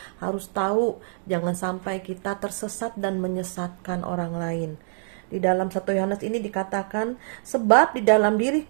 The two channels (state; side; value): silent; left; digital silence